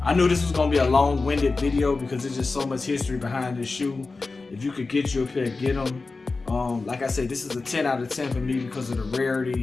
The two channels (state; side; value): quieter; right; 3.8 dB